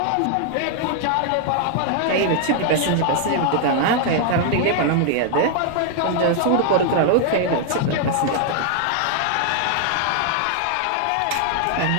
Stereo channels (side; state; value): both; different; correlation 0.00